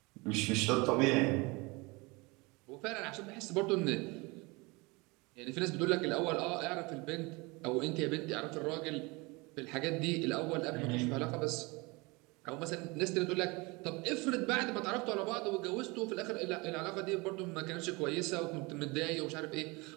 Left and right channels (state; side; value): quieter; left; 25.8 dB